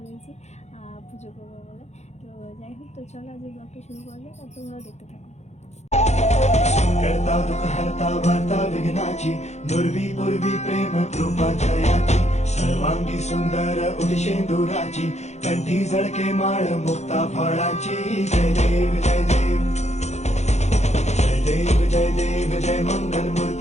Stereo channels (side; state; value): right; late; 0.32 ms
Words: পুজো করবো বলে। তো যাই হোক, তো চলো আজকে ব্লগটা শুরু করা যাক, আর তোমরাও দেখতে থাকো। करता दुःख हरता वार्ता विघ्नाची दुर्वी पूर्वी प्रेम कृपा जयाची सर्वांगी सुंदर उदिशेंदुराची कंठी झळके माळ मुक्ता फळाची जय देव जय देव जय देव जय देव जय मंगल